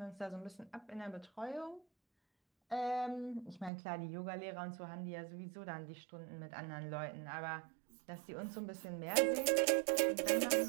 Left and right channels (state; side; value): drops out; left; at 3.7 s